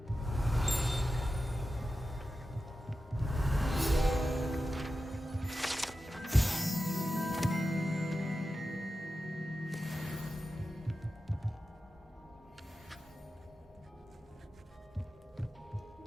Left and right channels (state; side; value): normal; both; correlation 0.92